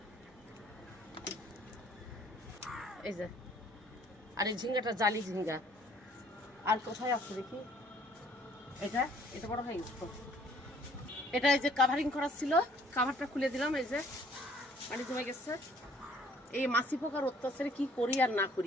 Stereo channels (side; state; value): both; normal; correlation 0.59